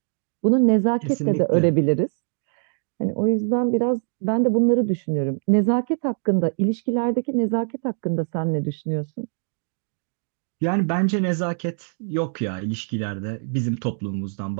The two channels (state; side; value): silent; left; digital silence